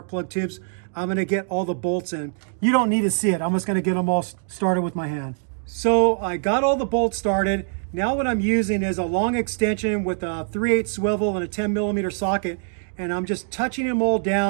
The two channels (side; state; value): left; silent; digital silence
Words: plug tubes, I'm gonna get all the bolts in. You don't need to see it. I'm just gonna get them all started with my hand. So I got all the bolts started. Now what I'm using is a long extension with a 3/8 swivel and a 10mm socket, and I'm just touching them all